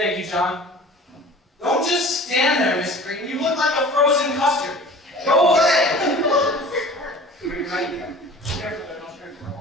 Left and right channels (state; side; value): normal; both; correlation 0.42